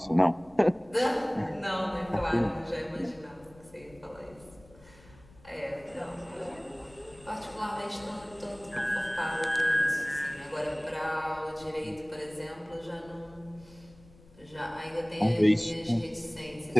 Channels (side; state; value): left; noise; rumble, 24 dB below the sound